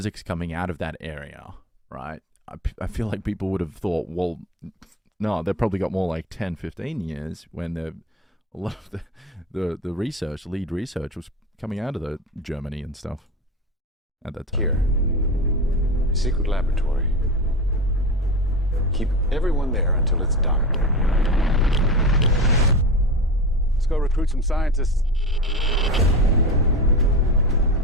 coming out of that area, right? I feel like people would have thought, well, no, they've probably got more like 10, 15 years when a lot of the research, lead research, was coming out of the Germany and stuff at that time. Here, a secret laboratory. Keep everyone there until it's done. Let's go recruit some scientists.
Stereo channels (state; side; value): normal; both; correlation 0.26